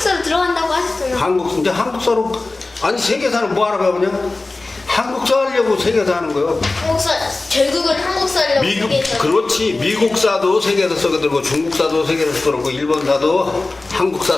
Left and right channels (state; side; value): quieter; right; 3.2 dB